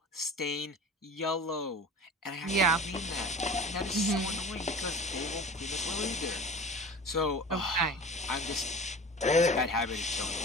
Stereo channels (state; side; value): normal; both; correlation 0.38